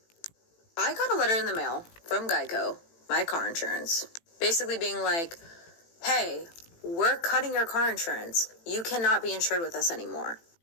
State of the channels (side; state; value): right; late; 18 ms